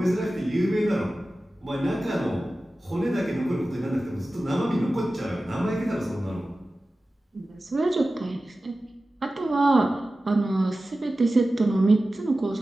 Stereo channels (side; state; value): both; normal; correlation 0.95